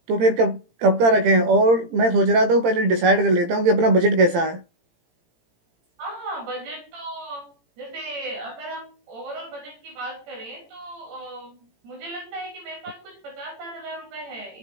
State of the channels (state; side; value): late; left; 18 ms